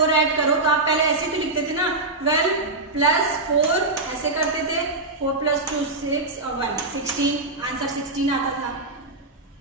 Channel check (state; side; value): quieter; left; 3.1 dB